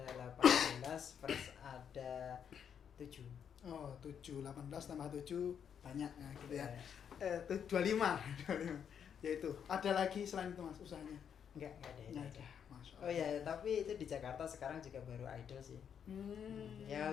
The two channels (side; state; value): right; quieter; 8.0 dB